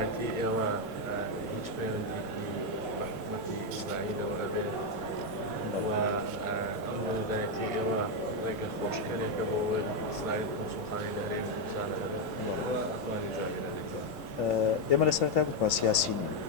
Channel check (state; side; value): normal; both; correlation 0.03